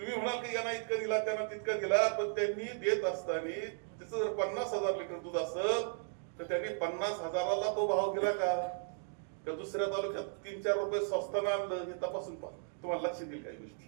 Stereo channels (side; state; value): left; silent; digital silence